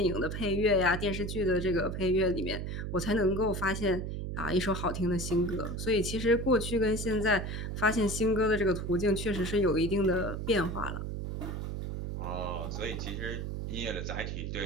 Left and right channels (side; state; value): right; noise; hum, 4 dB below the sound